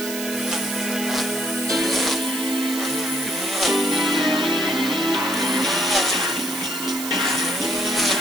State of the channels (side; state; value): right; noise; hiss, 7 dB below the sound